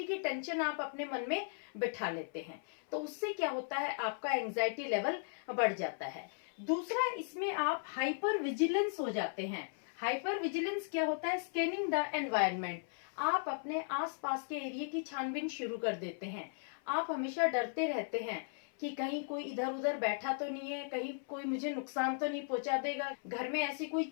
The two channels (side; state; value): right; silent; 53 dB below the other